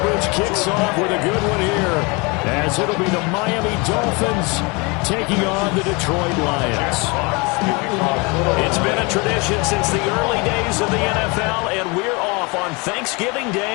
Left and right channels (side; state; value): right; quieter; 28.5 dB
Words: kicks off with a good one here, as it'll be the Miami Dolphins taking on the Detroit Lions. It's been a tradition since the early days of the NFL, and we're off on Thanksgiving